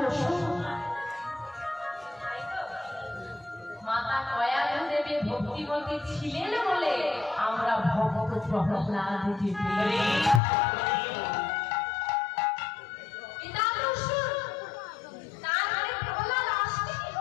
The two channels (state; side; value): drops out; right; at 10.4 s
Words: মাতা কয়াধু দেবী ভক্তিমতী ছিলেন বলে আমরা ভক্ত প্রহ্লাদকে পেলাম।